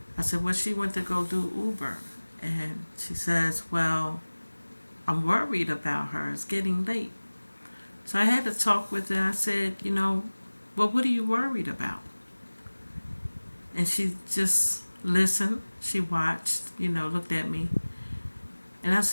I said, well, she went to go do Uber. And she says, well, I'm worried about her. It's getting late. So I had to talk with her. I said, well, what are you worried about? And she just listened. She watched, looked at me. And I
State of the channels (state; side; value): inverted; both; correlation -1.00